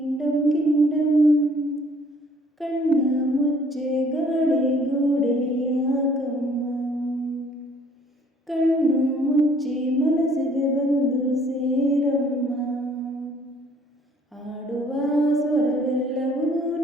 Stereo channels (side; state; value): both; normal; correlation 0.59